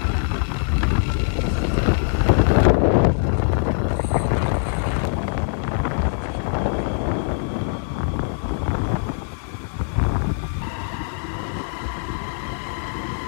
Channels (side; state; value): right; silent; 62 dB below the other